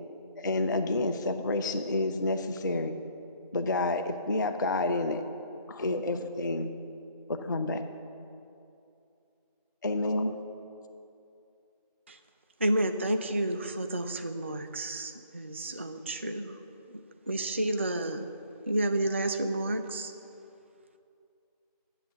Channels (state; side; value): inverted; both; correlation -0.63